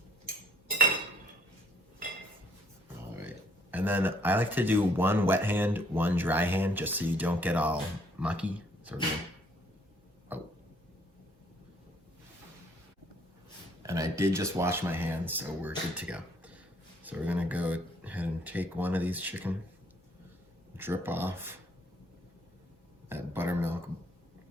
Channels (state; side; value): normal; both; correlation 0.64